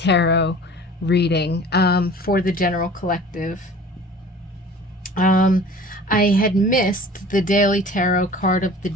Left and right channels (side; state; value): both; normal; correlation 0.44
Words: reading for the general collective. I had missed the daily tarot card of the